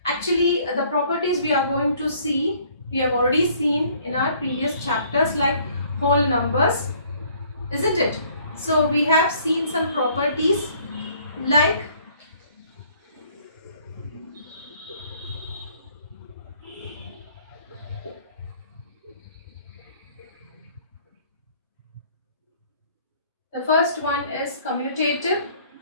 Actually, the properties we are going to see, we have already seen in our previous chapters like whole numbers, isn't it? So we have seen some properties like the first one is commutative.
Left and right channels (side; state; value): both; inverted; correlation -0.60